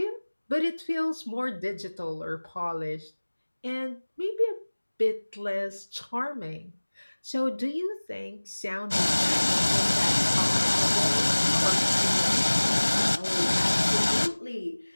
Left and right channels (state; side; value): inverted; both; correlation -1.00